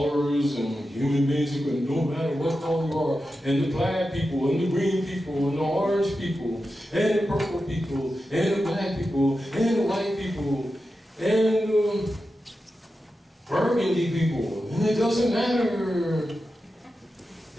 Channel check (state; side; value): normal; both; correlation 0.91